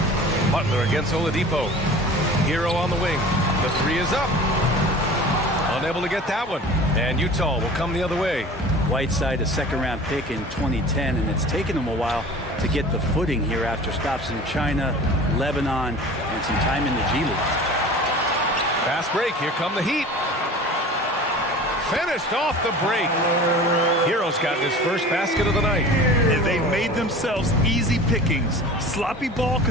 Butler against Oladipo. Hero on the wing. The 3 is up. Unable to get that one. And Utah will come the other way. Whiteside, a second-round pick in 2010, and it's taken him a while to get the footing here after stops in China, Lebanon, and some time in the G League. Fast break. Here come the Heat. Finished off the break. Hero's got his first basket of the night. And they've made themselves easy pickings. Sloppy ball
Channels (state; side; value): normal; both; correlation 0.40